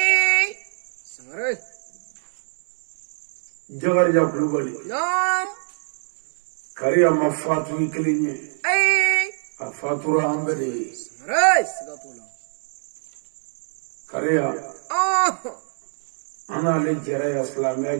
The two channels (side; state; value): left; silent; 63 dB below the other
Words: أري. جغرجا كلوبالي. نعم. كاريا مفاتو يكليني. أي. أفاتورا أمبري. أري. سكاتولا. كاريا. أنا لجرا إسلامية